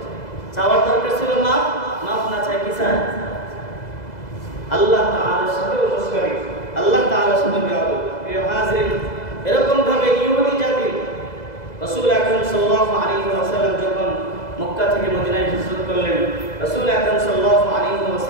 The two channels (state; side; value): late; right; 2.0 ms